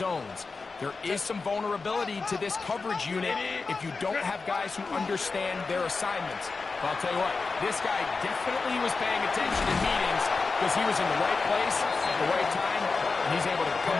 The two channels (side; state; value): right; quieter; 4.3 dB